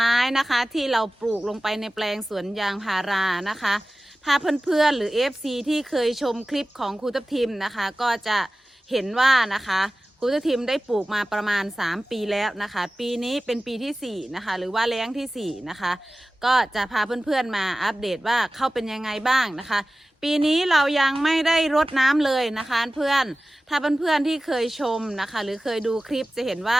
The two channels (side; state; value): both; normal; correlation 0.96